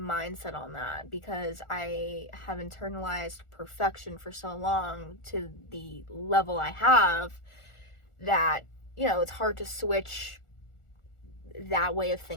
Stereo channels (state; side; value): late; right; 1.4 ms